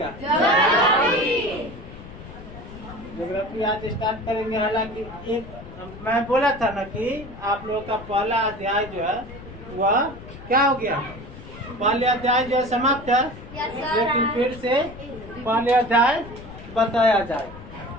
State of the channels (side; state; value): left; noise; rumble, 15 dB below the sound